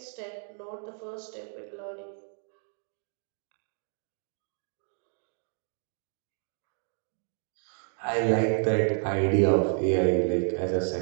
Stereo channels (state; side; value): silent; left; 57 dB below the other